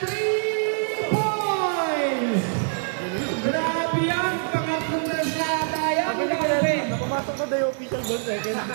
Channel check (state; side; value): silent; left; digital silence